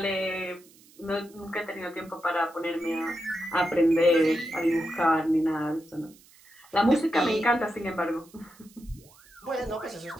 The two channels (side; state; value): right; noise; hiss, 26 dB below the sound